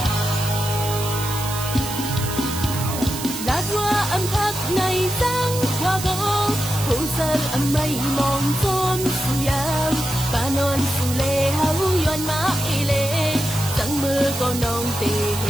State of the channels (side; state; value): right; noise; hiss, 7 dB below the sound